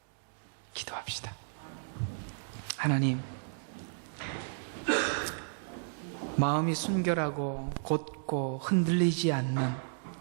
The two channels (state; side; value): silent; left; digital silence